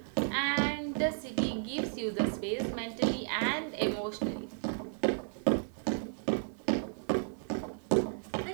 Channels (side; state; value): left; silent; 55 dB below the other